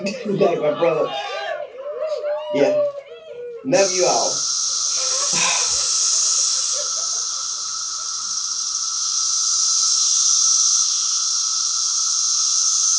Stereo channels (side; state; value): both; identical; correlation 1.00